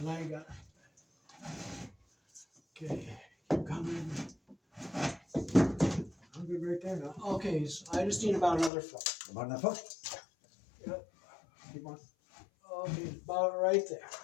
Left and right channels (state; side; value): drops out; right; at 8.7 s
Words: I ain't got. Okay, keep coming. I'm good right there now. Okay, so I just need about another foot. About enough hook? Yep. Keep on. Okay, about right there.